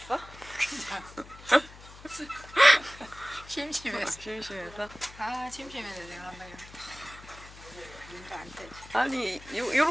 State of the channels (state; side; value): noise; left; hum, 18 dB below the sound